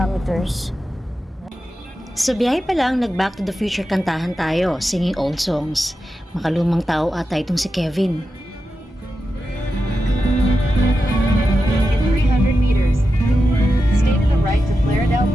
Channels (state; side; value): normal; both; correlation 0.90